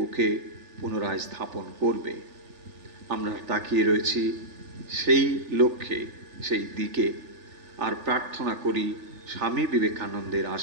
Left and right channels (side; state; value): left; late; 3.4 ms